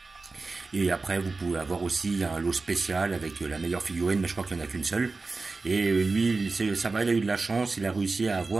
Et après vous pouvez avoir aussi un lot spécial avec la meilleure figurine, mais je crois qu'il n'y en a qu'une seule. Et lui, ça va, il a eu de la chance, il a réussi à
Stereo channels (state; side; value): quieter; left; 3.8 dB